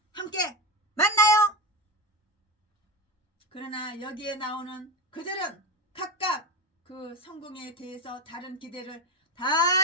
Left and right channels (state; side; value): normal; both; correlation 0.17